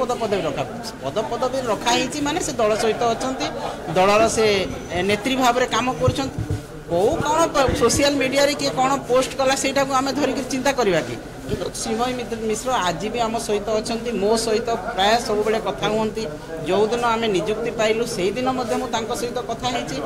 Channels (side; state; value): both; identical; correlation 1.00